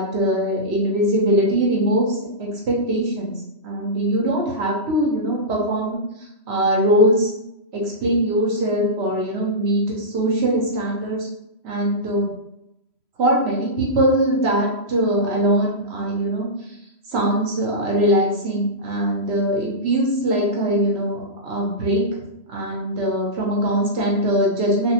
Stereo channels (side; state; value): left; late; 3.0 ms